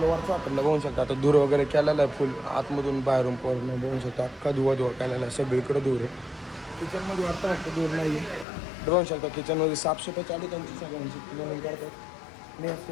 वरचा हॉटेलला बघू शकता. आता धूर वगैरे केलेला आहे फुल आतमधून बाहेरून पूर्ण बघू शकता. अख्खा धुवा केलेला आहे, सगळीकडे धूर आहे. किचनमध्ये वाटतं वाटतं धूर नाही आहे. बघू शकता किचनमध्ये साफसफाई चालू त्यांची सगळ्यांची क्लिनिंग करतात. मी याच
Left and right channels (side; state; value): right; drops out; at 8.5 s